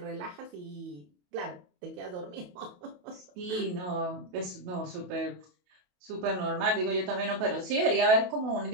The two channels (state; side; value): late; left; 28 ms